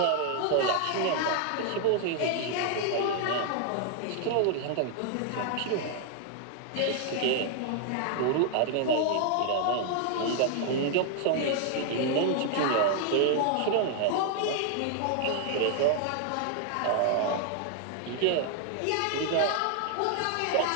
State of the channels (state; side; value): different; both; correlation 0.00